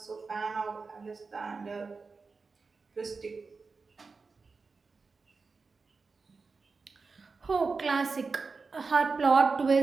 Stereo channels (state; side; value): quieter; left; 4.4 dB